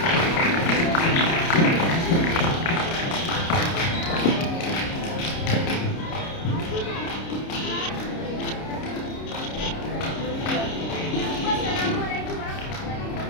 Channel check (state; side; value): late; right; 30 ms